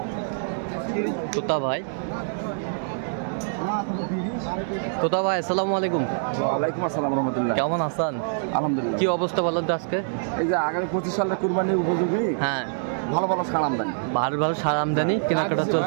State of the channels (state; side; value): silent; left; digital silence